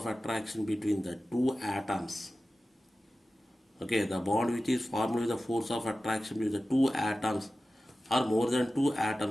attraction between the two atoms. Okay, the bond which is formed by the force of attraction between the two atoms or more than two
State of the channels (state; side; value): normal; both; correlation 0.95